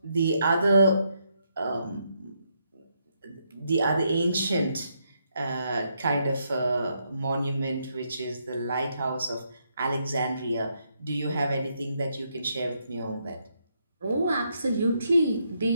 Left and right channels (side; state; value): both; inverted; correlation -0.77